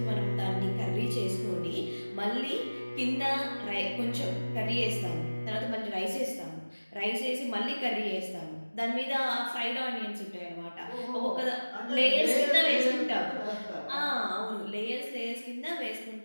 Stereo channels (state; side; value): inverted; both; correlation -1.00